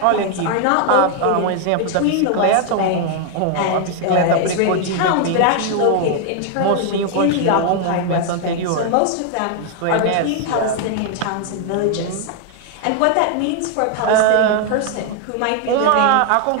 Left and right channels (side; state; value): both; different; correlation 0.00